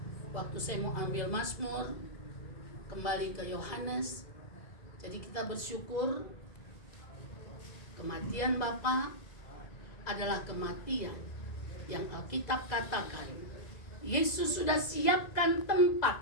waktu saya mau ambil Mazmur, kembali ke Yohanes, jadi kita bersyukur kematian Bapa adalah kematian yang Alkitab katakan Yesus sudah siapkan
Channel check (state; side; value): late; right; 2.0 ms